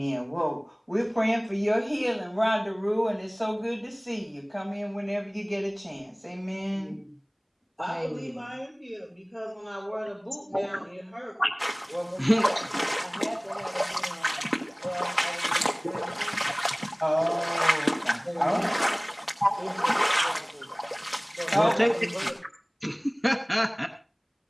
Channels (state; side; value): identical; both; correlation 1.00